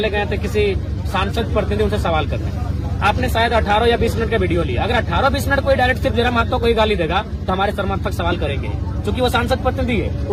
गए थे किसी सांसद प्रतिनिधि उनसे सवाल करने। आपने शायद 18 या 20 मिनट का वीडियो लिया। अगर 18-20 मिनट कोई डायरेक्ट सिर्फ जयराम मातो को ही गाली देगा तो हमारे समर्थक सवाल करेंगे, क्योंकि वो सांसद प्रतिनिधि है।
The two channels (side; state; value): both; identical; correlation 1.00